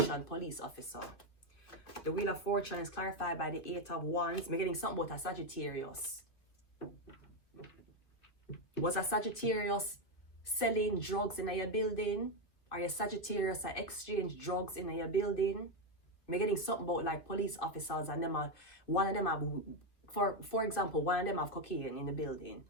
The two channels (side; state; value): right; late; 2.4 ms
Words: police officer. The Wheel of Fortune is clarified by the Eight of Wands. I'm getting something about a Sagittarius. Was a Sagittarius selling drugs in your building? Are you Sagittarius that exchange drugs in your building? I'm getting something about like police officers and them are, one of them have, for example, one of them have cocaine in the building